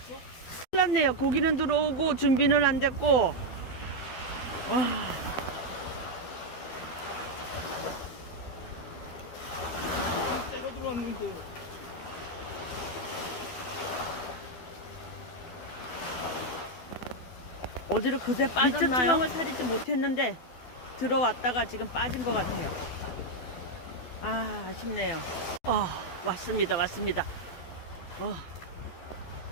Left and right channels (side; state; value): right; late; 12 ms